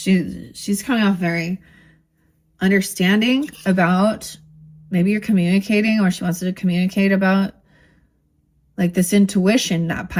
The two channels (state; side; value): identical; both; correlation 1.00